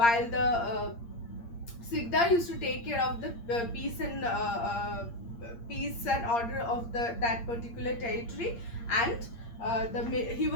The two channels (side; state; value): right; late; 8.6 ms